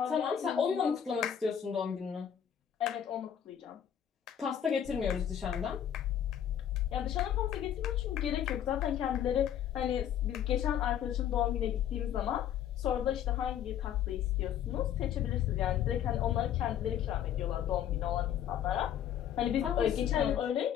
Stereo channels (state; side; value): quieter; right; 9.7 dB